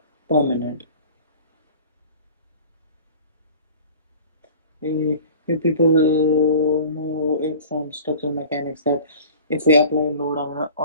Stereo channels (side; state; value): both; inverted; correlation -0.43